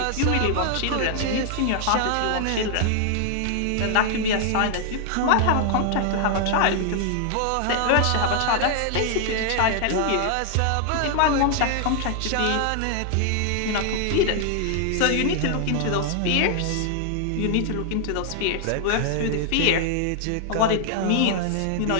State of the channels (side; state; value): both; different; correlation 0.00